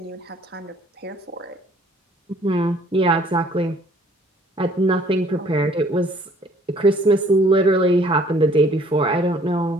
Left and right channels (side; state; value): both; normal; correlation 0.58